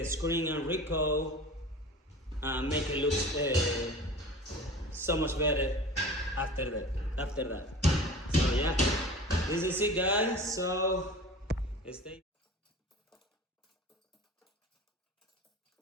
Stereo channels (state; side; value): normal; both; correlation 0.38